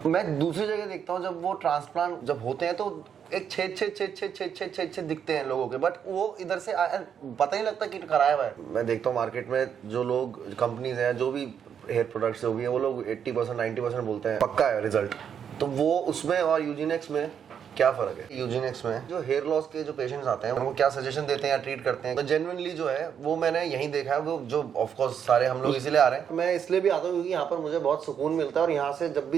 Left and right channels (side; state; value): left; quieter; 8.0 dB